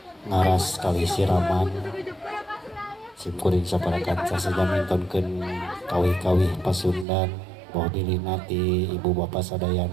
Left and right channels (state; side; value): drops out; left; at 7.1 s